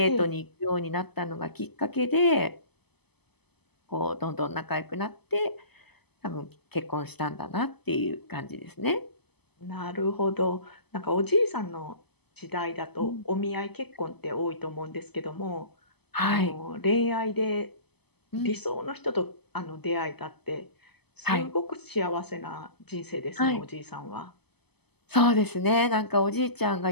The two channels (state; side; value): late; right; 0.98 ms